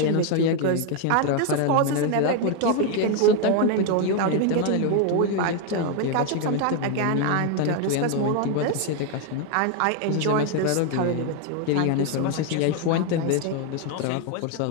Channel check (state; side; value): different; both; correlation 0.01